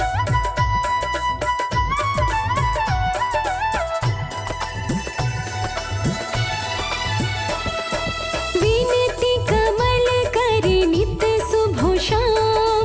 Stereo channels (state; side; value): identical; both; correlation 1.00